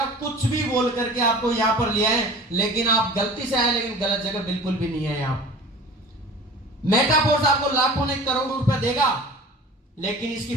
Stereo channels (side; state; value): both; normal; correlation 0.41